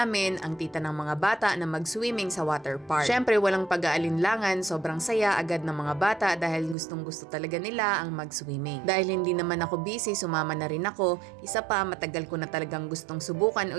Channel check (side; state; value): left; drops out; at 6.8 s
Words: ang tita ng mga bata na mag-swimming sa water park. Syempre walang pag-aalinlangan, sobrang saya agad ng mga bata dahil gustong gusto talaga nila ang mag-swimming. Dahil hindi naman ako busy, sumama na rin ako. Isa pa, matagal ko na talagang gustong subukan